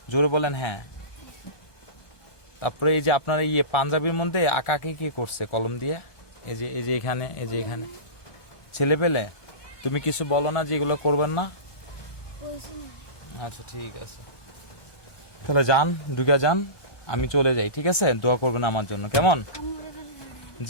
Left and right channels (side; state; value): right; late; 1.2 ms